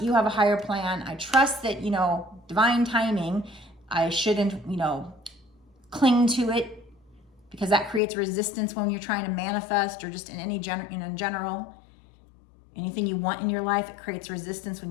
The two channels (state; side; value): drops out; right; at 8.0 s